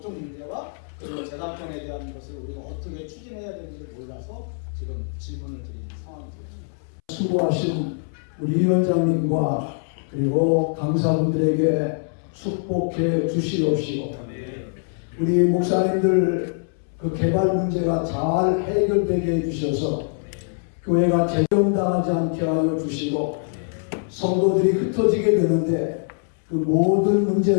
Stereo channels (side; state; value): right; silent; 63 dB below the other